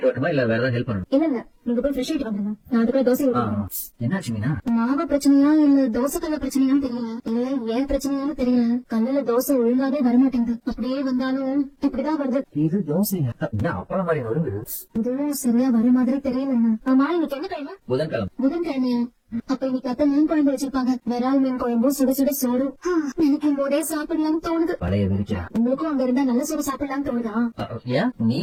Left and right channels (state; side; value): identical; both; correlation 1.00